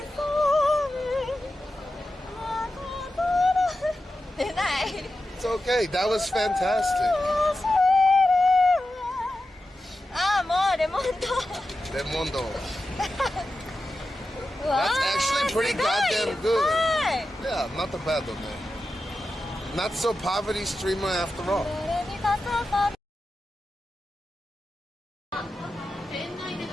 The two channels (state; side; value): normal; both; correlation 0.91